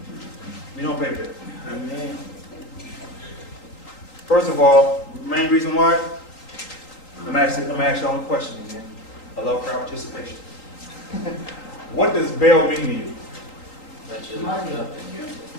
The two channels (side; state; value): right; late; 3.8 ms